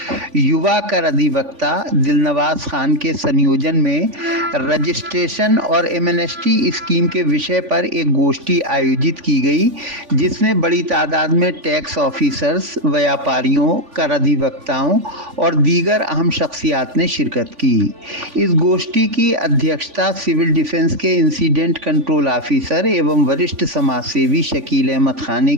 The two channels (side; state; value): left; late; 3.5 ms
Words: युवा कर अधिवक्ता दिलनवाज खान के संयोजन में रजिस्ट्रेशन और एमनेस्टी स्कीम के विषय पर एक गोष्ठी आयोजित की गई, जिसमें बड़ी तादाद में टैक्स ऑफिसर्स, व्यापारियों, कर अधिवक्ताओं और दीगर अहम शख्सियात ने शिरकत की। इस गोष्ठी की अध्यक्षता सिविल डिफेंस के इंसिडेंट कंट्रोल ऑफिसर एवं वरिष्ठ समाज सेवी शकील अहमद खान ने